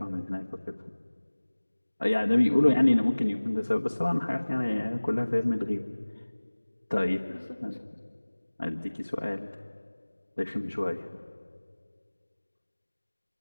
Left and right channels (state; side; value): inverted; both; correlation -1.00